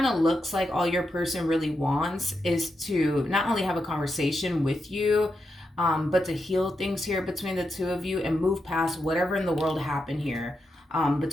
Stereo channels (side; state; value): both; normal; correlation 0.85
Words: of looks like all your person really wants is to not only have a conversation with you, but to heal things here between the two of you and move past whatever in the world happened here